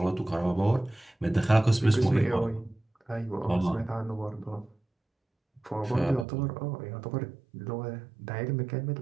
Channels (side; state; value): left; drops out; at 6.2 s